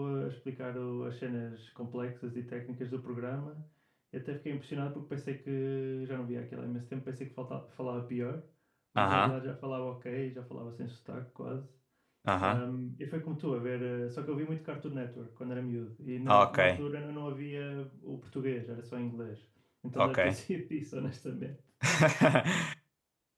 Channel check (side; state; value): both; identical; correlation 1.00